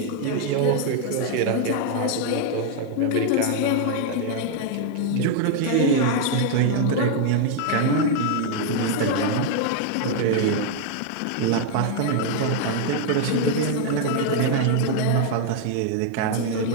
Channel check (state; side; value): different; both; correlation 0.00